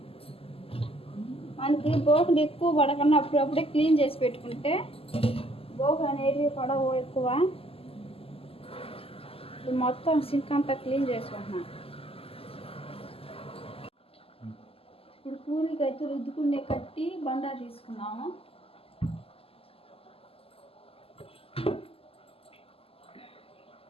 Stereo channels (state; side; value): late; right; 0.28 ms